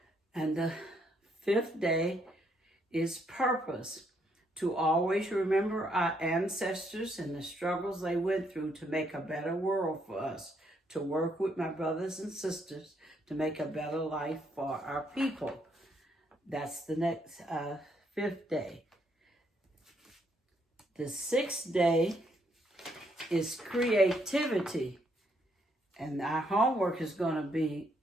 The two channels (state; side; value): normal; both; correlation 0.73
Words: And the 5th day is purpose, to always remember our ancestors and the struggles they went through to make a better world for us, to work with my brothers and sisters to make a better life for our people. That's the next 5th day. The 6th day is creativity, and our homework is going to be